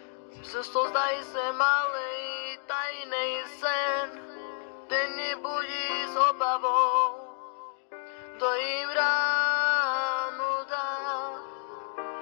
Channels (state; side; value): silent; right; 58 dB below the other